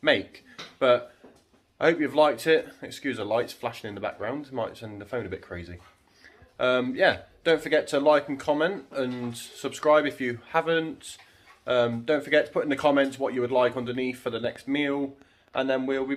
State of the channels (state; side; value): identical; both; correlation 1.00